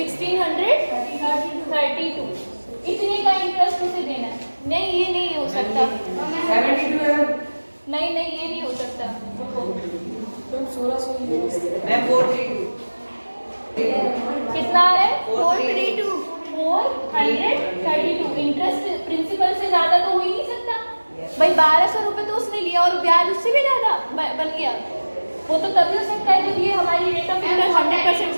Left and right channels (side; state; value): both; inverted; correlation -1.00